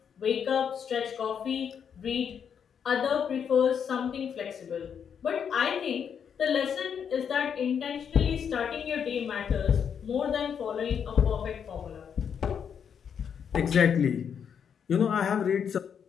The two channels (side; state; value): right; quieter; 7.6 dB